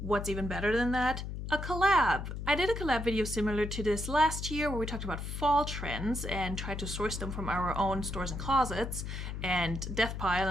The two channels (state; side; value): noise; left; hum, 6 dB below the sound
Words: even better than that? A collab. I did a collab video similar to this last year where we talked about fall trends and tried to source them from our own stores and closets and death pile